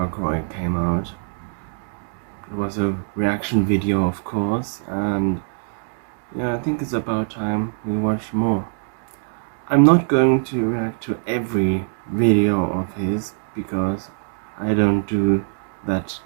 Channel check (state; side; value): silent; left; digital silence